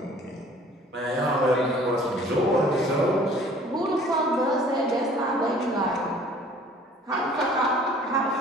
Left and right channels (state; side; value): normal; both; correlation 0.52